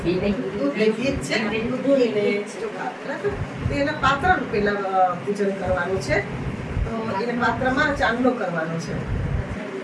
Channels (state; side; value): identical; both; correlation 1.00